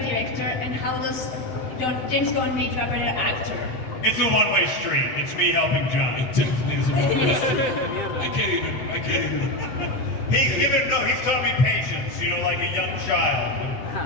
director, and how does James Gunn make you a better actor? It's a one-way street. It's me helping John. It definitely is a one. I can't even. He's taught me patience, you know, like a young child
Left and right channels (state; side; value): late; right; 7.8 ms